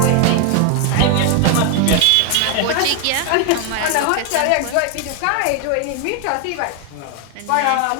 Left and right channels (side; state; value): both; different; correlation 0.01